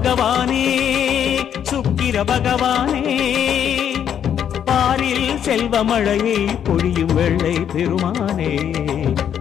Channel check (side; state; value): right; quieter; 9.1 dB